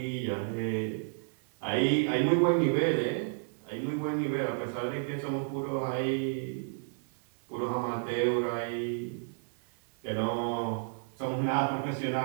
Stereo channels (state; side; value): silent; left; 57 dB below the other